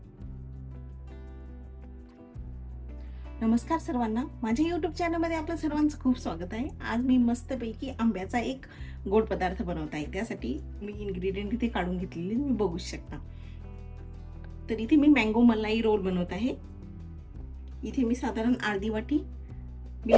नमस्कार सर्वांना, माझ्या यूट्यूब चॅनलमध्ये आपलं सर्वांचं खूप स्वागत आहे. आज मी मस्तपैकी आंब्याचा एक गोड पदार्थ बनवत आहे. त्यासाठी मी इन्ग्रेडियंट इथे काढून घेतलेले तुम्ही बघू शकता. तर इथे मी मँगो मलाई रोल बनवत आहे. इथे मी साधारण अर्धी वाटी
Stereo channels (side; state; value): both; identical; correlation 1.00